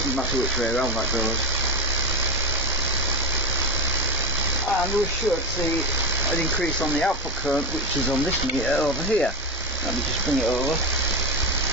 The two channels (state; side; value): normal; both; correlation 0.16